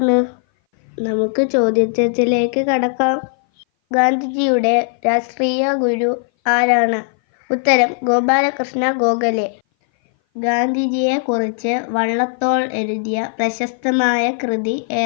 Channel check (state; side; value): silent; right; 59 dB below the other